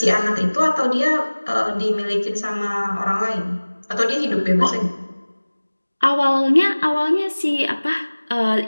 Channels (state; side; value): inverted; both; correlation -1.00